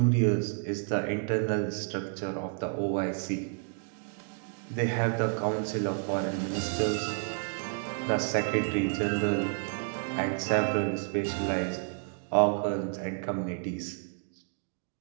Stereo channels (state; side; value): silent; left; 57 dB below the other